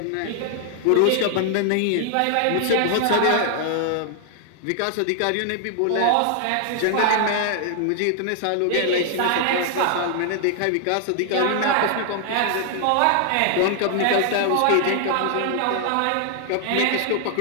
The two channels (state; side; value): different; both; correlation 0.00